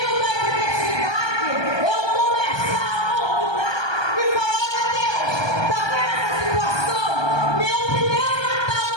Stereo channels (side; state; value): right; late; 1.2 ms